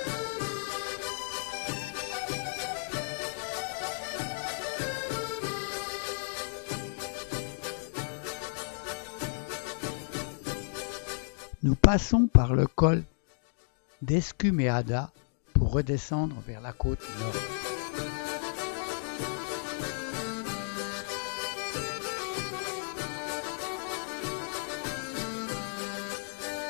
Nous passons par le col d'Escumeada pour redescendre vers la côte nord.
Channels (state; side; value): silent; right; digital silence